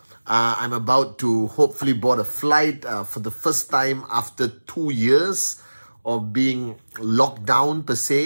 I'm about to hopefully board a flight for the first time after 2 years of being locked down per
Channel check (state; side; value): inverted; both; correlation -1.00